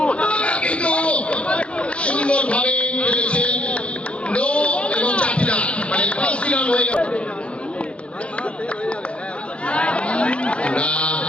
কিন্তু সুন্দরভাবে খেলেছে নো এবং 4টি রান, মানে 5টি রান হয়ে গেল।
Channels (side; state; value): right; late; 0.060 ms